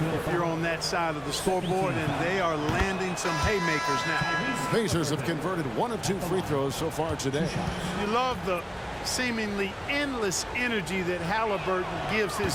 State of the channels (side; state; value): both; identical; correlation 1.00